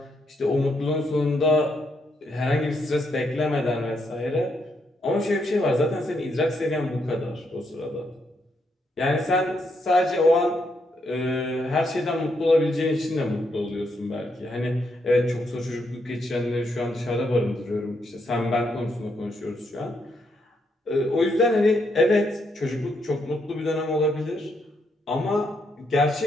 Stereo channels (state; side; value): normal; both; correlation 0.77